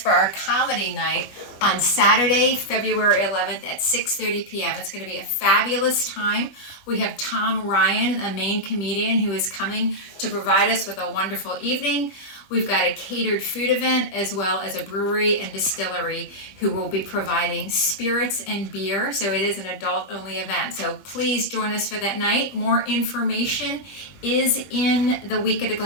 our comedy night on Saturday, February 11th at 6:30 p.m. It's going to be a fabulous time. We have Tom Ryan, a main comedian, who is coming to provide us with a wonderful evening. We've got a catered food event as well as a brewery and distillery who will be providing spirits and beer. So it is an adult only event. So please join us for that night. More information is in the Week at a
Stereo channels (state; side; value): late; right; 21 ms